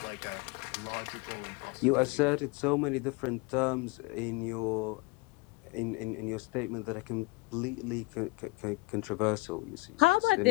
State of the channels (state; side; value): quieter; right; 25.0 dB